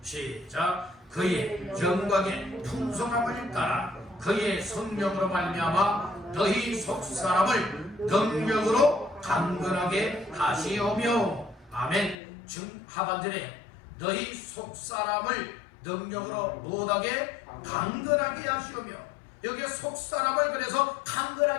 시작. 그의 영광의 풍성함을 따라 그의 성령으로 말미암아 너희 속사람을 능력으로 강건하게 하시오며. 아멘. 하반절에 너희 속사람을 능력으로 못하게 강건하게 하시오며, 여기에 속사람을 그래서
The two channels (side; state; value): right; drops out; at 12.2 s